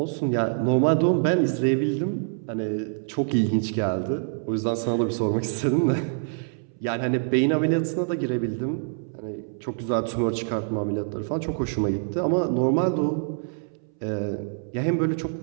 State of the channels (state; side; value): silent; left; 61 dB below the other